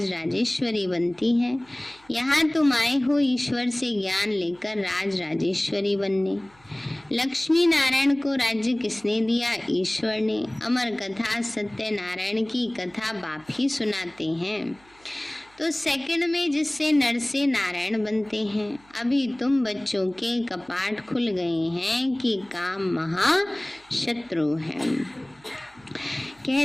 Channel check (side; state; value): right; noise; hum, 29 dB below the sound